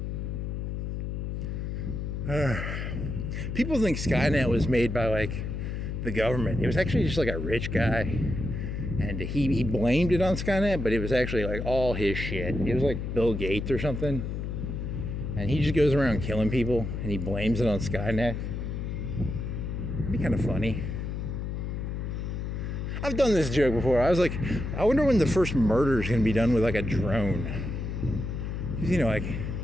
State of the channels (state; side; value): noise; left; hum, 4 dB below the sound